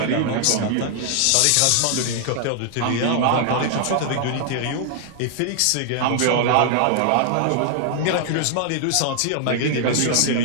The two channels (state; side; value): different; both; correlation 0.00